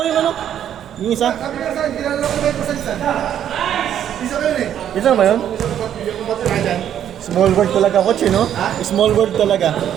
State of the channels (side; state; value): left; quieter; 10.1 dB